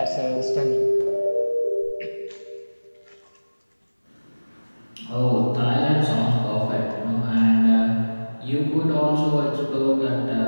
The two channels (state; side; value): inverted; both; correlation -1.00